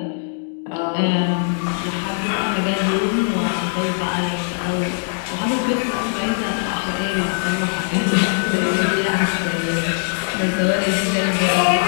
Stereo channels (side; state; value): right; silent; digital silence